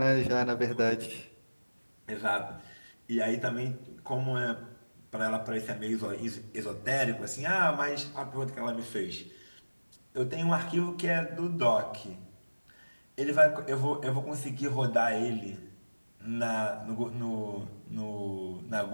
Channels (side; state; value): both; inverted; correlation -1.00